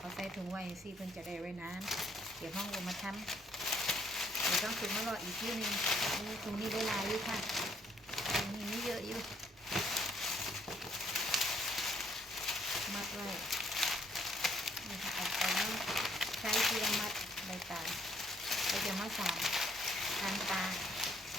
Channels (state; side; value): normal; both; correlation 0.67